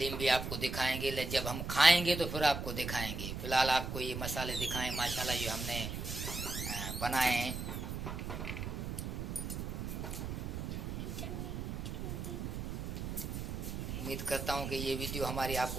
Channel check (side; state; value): right; noise; rumble, 4 dB below the sound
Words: भी आपको दिखाएंगे, जब हम खाएंगे तो फिर आपको दिखाएंगे। फिलहाल आपको ये मसाले दिखाएं माशाल्लाह जो हमने बनाए हैं। उम्मीद करता हूँ कि ये वीडियो हमारी